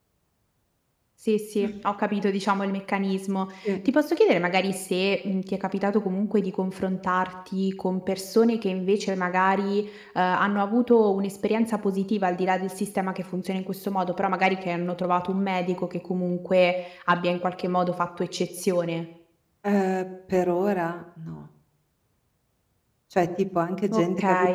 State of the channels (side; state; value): both; identical; correlation 1.00